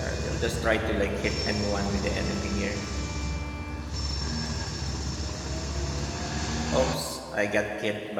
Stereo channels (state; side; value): identical; both; correlation 1.00